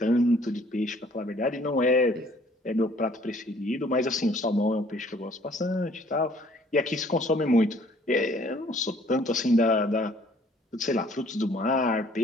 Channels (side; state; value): both; normal; correlation 0.58